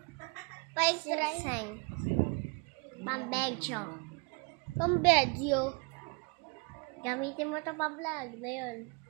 Insane. Pambedyo. Pambedyo. Gamitin mo to pa-vlog na yun.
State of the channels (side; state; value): left; quieter; 31.3 dB